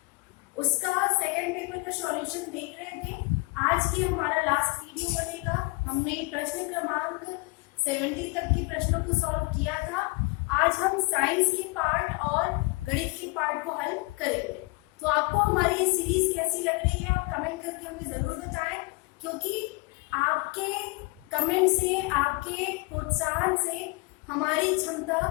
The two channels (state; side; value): quieter; right; 27.4 dB